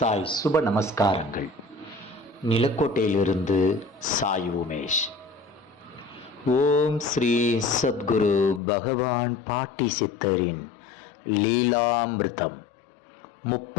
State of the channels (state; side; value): drops out; right; at 8.6 s